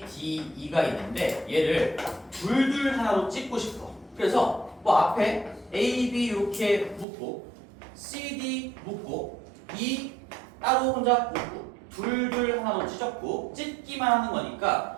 D, E가 있는데 얘를 둘둘 하나로 찍고 싶어. 그래서 뭐 앞에 A, B 이렇게 묶고 C, D 묶고 E 따로 혼자 묶고 둘둘 하나로 찢었고 찢기만 하는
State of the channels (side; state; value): left; drops out; at 7.1 s